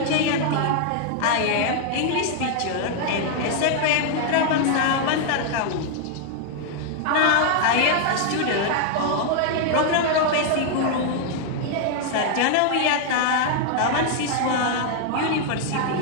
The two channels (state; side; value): different; both; correlation 0.00